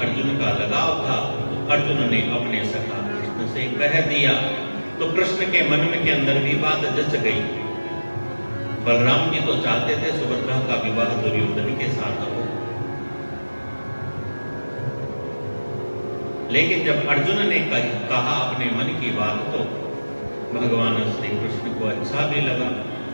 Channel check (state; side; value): inverted; both; correlation -1.00